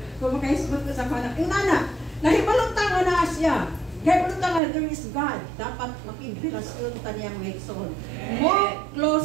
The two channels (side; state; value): left; drops out; at 4.6 s